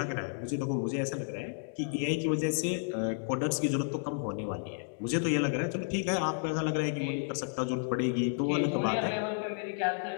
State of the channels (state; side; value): silent; right; digital silence